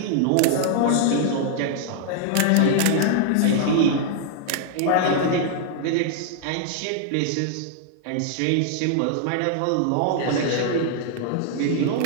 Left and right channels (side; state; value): both; different; correlation 0.00